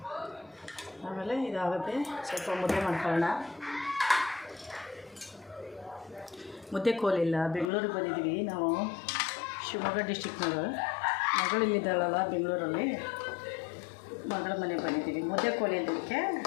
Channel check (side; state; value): right; drops out; at 7.7 s